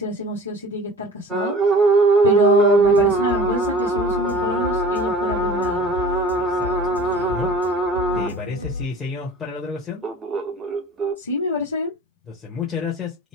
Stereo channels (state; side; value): normal; both; correlation 0.42